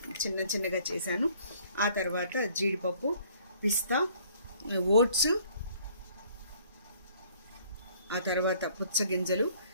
చిన్నగా చేశాను. ఆ తర్వాత జీడిపప్పు, పిస్తా, ఓట్స్, ఆ తర్వాత పుచ్చగింజలు,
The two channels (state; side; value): inverted; both; correlation -0.59